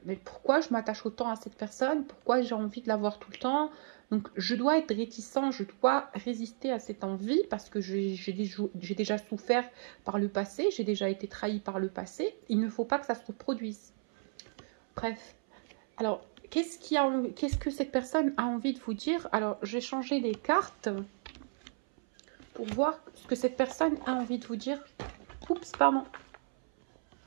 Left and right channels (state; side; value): silent; left; 55 dB below the other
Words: mais pourquoi je m'attache autant à cette personne? Pourquoi j'ai envie de la voir tout le temps? Donc, je dois être réticent, je dois résister à cette envie, parce que j'ai déjà souffert par le passé, j'ai déjà été trahi par le passé. Il ne faut pas que ça se reproduise. Bref. Alors, qu'est-ce que cette personne a envie de vous dire? Alors, j'ai changé les cartes pour voir ce que cette personne a envie de vous dire. Oups, pardon.